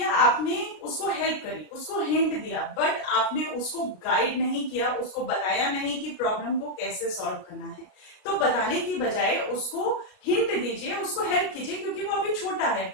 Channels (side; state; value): right; late; 33 ms